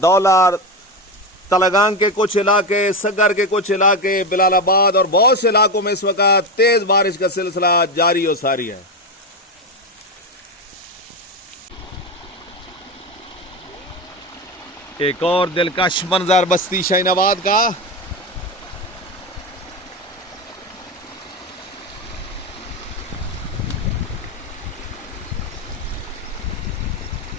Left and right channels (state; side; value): normal; both; correlation 0.15